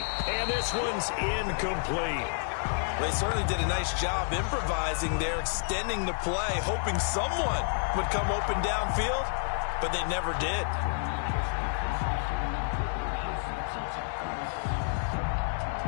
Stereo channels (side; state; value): right; silent; digital silence